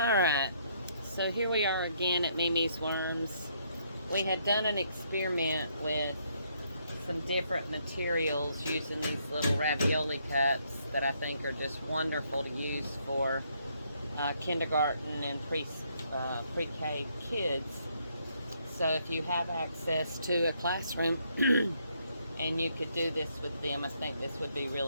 so here we are again at Mimi's Worms. We had done an experiment with some different materials using these little ravioli cups that I think are just wonderful to use for kindergarten and pre-K kids. So if you have access to a classroom and you could do this with them, I think this would be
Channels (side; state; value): both; inverted; correlation -0.71